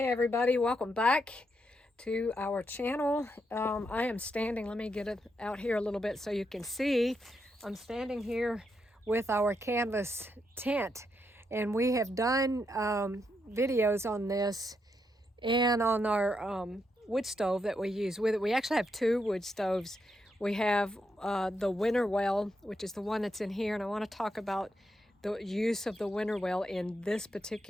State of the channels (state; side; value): normal; both; correlation 0.81